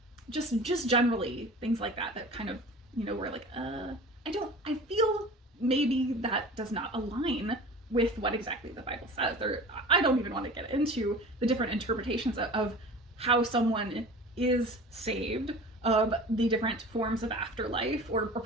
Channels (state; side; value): normal; both; correlation 0.39